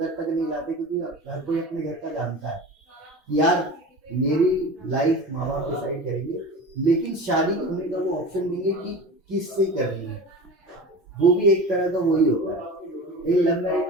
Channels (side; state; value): both; normal; correlation 0.33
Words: तक नहीं लाते, क्योंकि हर कोई अपने घर का जानता है यार मेरी लाइफ माँ बाप डिसाइड करेंगे, लेकिन शादी होने का वो ऑप्शन देंगे कि किससे करनी है, वो भी एक तरह का वही होता है। एक लव मैरिज